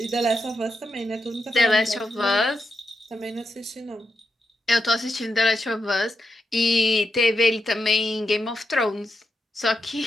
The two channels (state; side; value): normal; both; correlation 0.84